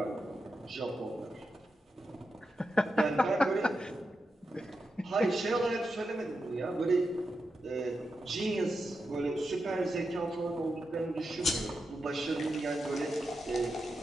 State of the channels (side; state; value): both; normal; correlation 0.88